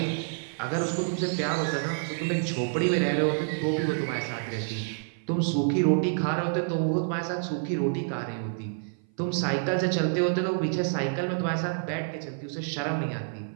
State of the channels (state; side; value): silent; left; 56 dB below the other